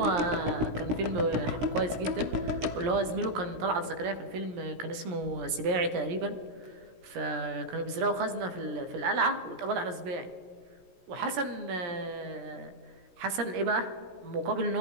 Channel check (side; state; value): left; late; 17 ms